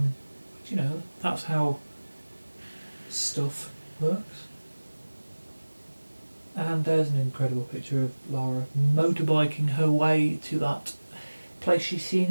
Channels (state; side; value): inverted; both; correlation -1.00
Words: You know, that's how stuff works. And there's an incredible picture of Lara motorbiking her way to that place she's seen